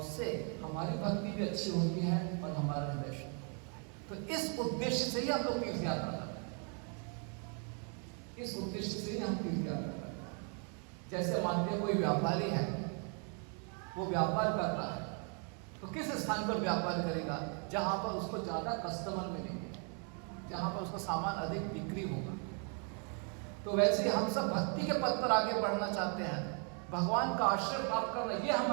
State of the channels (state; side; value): quieter; left; 39.5 dB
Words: हमारी भक्ति भी अच्छी होती है और हमारा हृदय शुद्ध होता है। तो इस उद्देश्य से ही हम लोग तीर्थ यात्रा करते हैं। इस उद्देश्य से ही हम तीर्थ यात्रा करते हैं। जैसे मानते हैं कोई व्यापारी है, वो व्यापार कर रहा है तो किस स्थान पर व्यापार करेगा? जहां पर उसको ज्यादा कस्टमर मिलेंगे, जहां पर उसका सामान अधिक बिक्री होगा। तो वैसे ही हम सब भक्ति के पथ पर आगे बढ़ना चाहते हैं, भगवान का आश्रय प्राप्त करना ये